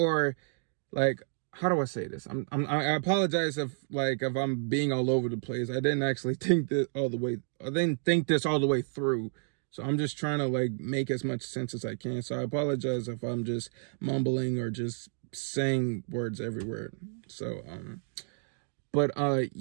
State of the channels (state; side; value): silent; left; digital silence